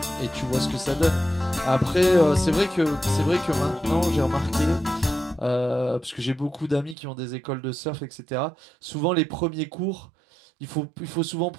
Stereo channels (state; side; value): drops out; left; at 7.0 s